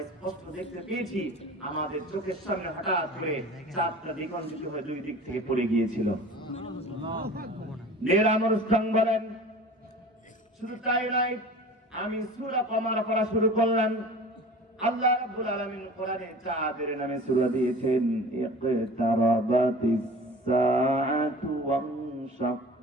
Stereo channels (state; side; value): normal; both; correlation 0.40